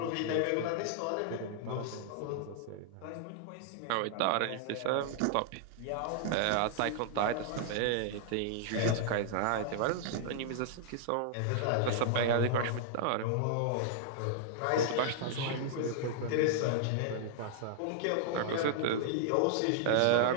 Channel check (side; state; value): both; different; correlation -0.01